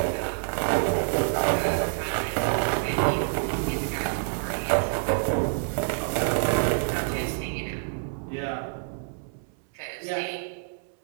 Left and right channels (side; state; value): left; silent; 60 dB below the other